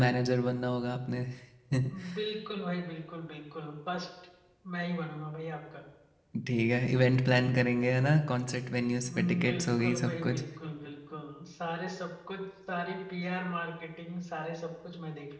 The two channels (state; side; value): identical; both; correlation 1.00